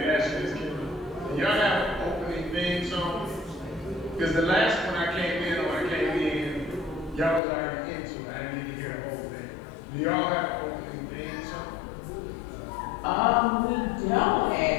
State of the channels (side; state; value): right; drops out; at 7.4 s